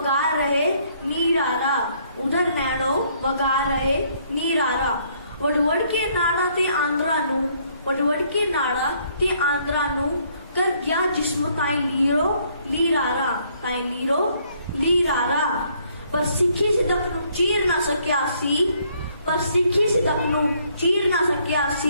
रहे नीरारा, उधर नैनो वगा रहे नीरारा। वडवड के नाड़ा ते आंद्रा नू, वडवड के नाड़ा ते आंद्रा नू। कर गया जिस्म ताई लीरो लीरारा, ताई लीरो लीरारा। पर सिखी सिदक नू चीर ना सकिया सी, पर सिखी सिदक नू चीर ना सकिया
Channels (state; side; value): inverted; both; correlation -0.67